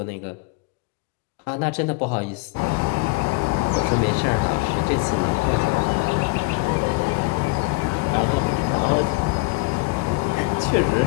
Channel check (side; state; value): right; quieter; 26.4 dB